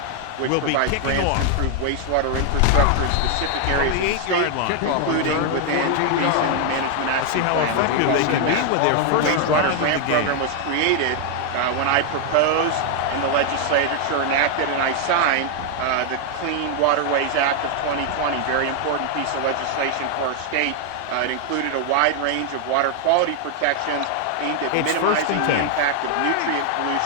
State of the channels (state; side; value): different; both; correlation 0.00